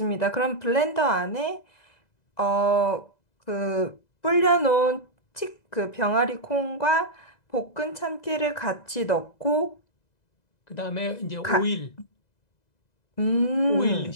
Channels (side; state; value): right; late; 2.0 ms